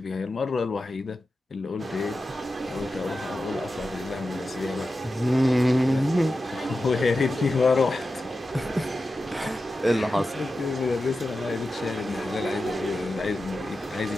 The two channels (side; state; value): both; normal; correlation 0.92